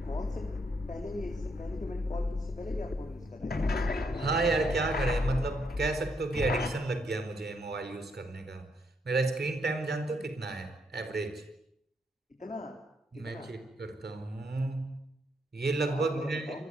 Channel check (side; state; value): both; normal; correlation 0.76